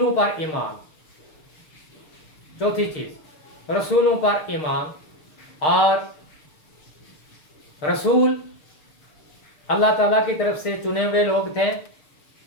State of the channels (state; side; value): late; right; 6.7 ms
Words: پر ایمان، چوتھی چیز رسولوں پر ایمان، اور رسول اللہ تعالیٰ کی طرف سے چنے ہوئے لوگ تھے،